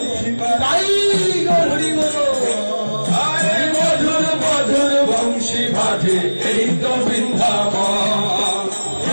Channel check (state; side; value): inverted; both; correlation -1.00